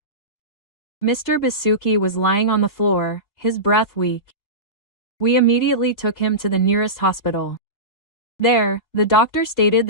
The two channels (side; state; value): right; late; 3.0 ms